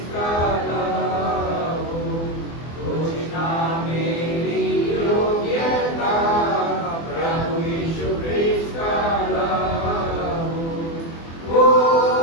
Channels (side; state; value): right; late; 24 ms